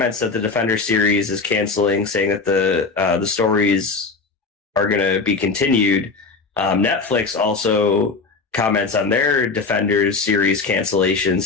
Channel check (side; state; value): right; quieter; 4.3 dB